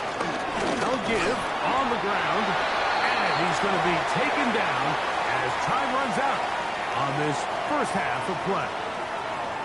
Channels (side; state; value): both; identical; correlation 1.00